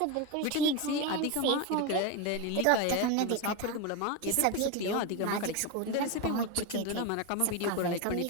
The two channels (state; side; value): different; both; correlation 0.03